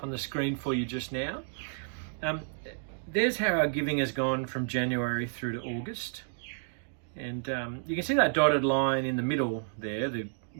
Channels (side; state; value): left; silent; digital silence